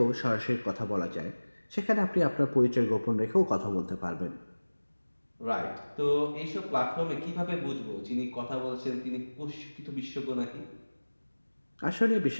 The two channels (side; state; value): both; inverted; correlation -1.00